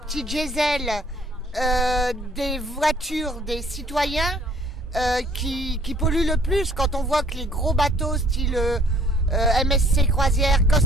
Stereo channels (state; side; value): normal; both; correlation 0.59